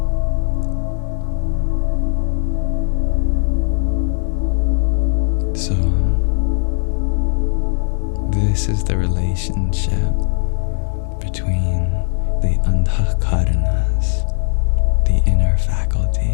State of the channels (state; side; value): silent; right; 66 dB below the other